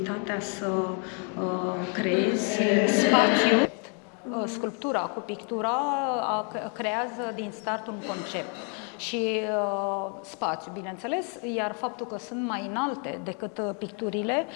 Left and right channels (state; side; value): quieter; right; 39.4 dB